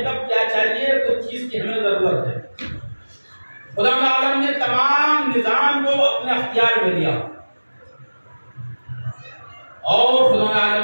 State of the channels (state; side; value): inverted; both; correlation -1.00